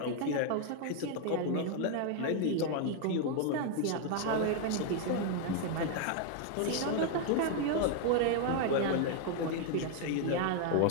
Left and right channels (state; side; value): different; both; correlation 0.00